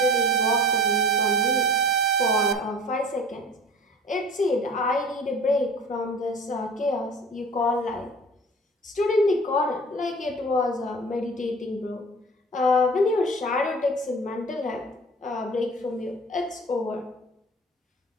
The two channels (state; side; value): normal; both; correlation 0.42